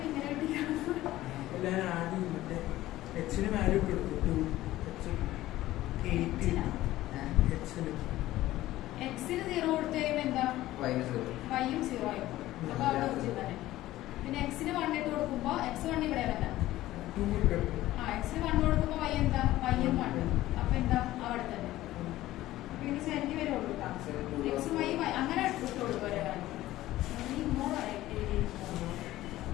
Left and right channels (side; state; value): right; quieter; 15.7 dB